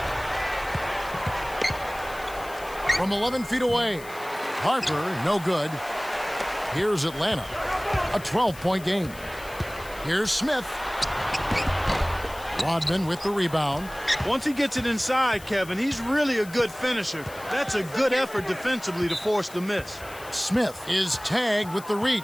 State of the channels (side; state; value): left; noise; hiss, 18 dB below the sound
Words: From 11 feet away. Harper, no good. Here's Atlanta. A 12-point game. Here's Smith. Rodman with the rebound. Once he gets it inside, Kevin, he's really a good finisher. That's a good effort defensively to force the miss. Smith is tagged with the